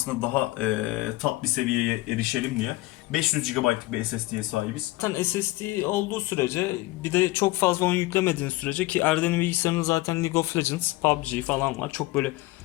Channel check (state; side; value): quieter; right; 19.2 dB